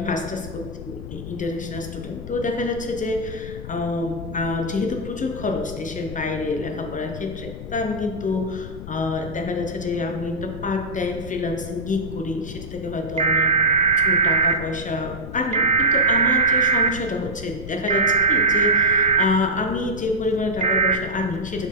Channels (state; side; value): noise; left; rumble, 10 dB below the sound